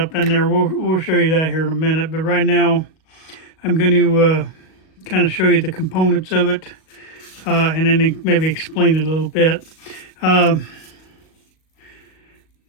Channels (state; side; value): late; right; 38 ms